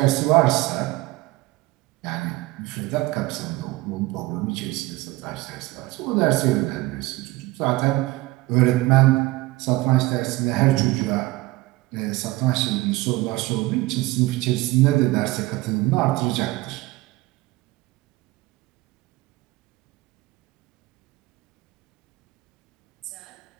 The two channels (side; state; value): left; quieter; 19.9 dB